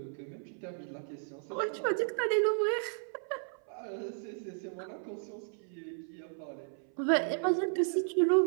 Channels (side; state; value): left; silent; 55 dB below the other